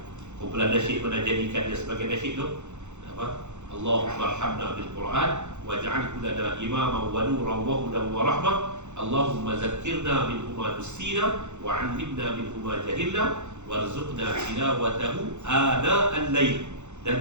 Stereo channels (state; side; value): late; left; 0.83 ms